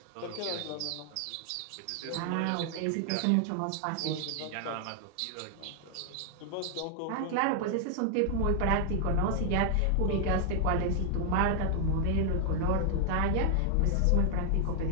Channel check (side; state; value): both; different; correlation 0.00